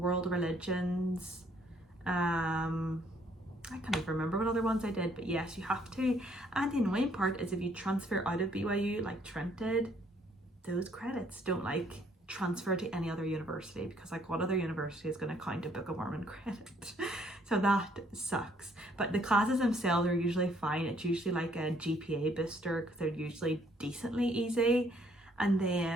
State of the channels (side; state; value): both; normal; correlation 0.65